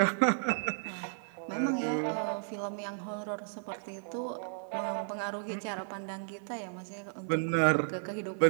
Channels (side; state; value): left; silent; 55 dB below the other